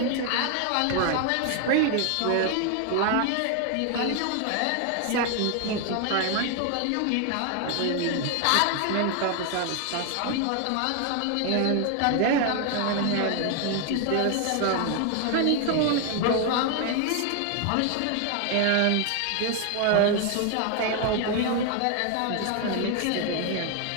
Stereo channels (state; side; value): different; both; correlation 0.00